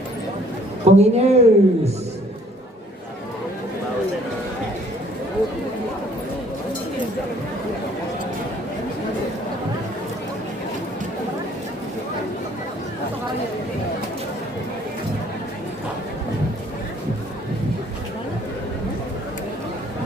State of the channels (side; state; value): both; normal; correlation 0.59